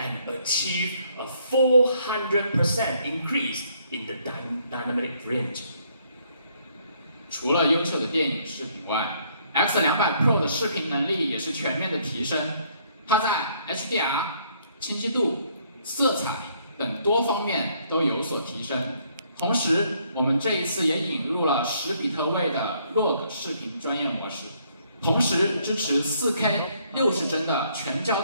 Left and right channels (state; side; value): inverted; both; correlation -0.67